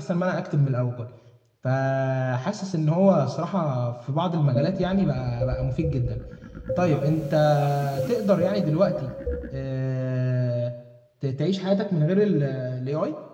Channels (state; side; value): identical; both; correlation 1.00